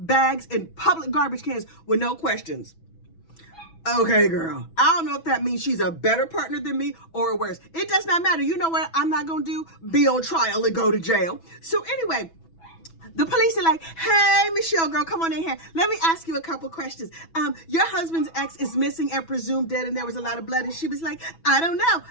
in public garbage cans with no questions. Okay, girl. I don't know if that means she's a better partner than me or worse. It does not matter. You know what I'm not going to do? Be on trial and go to jail. So anyway, the police are like, hey, Michelle, girl, come on in here. Let me ask you a couple questions. Your husband's ex is missing and presumed dead, and there was a lot of blood. And she was like, I don't know.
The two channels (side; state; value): right; late; 6.1 ms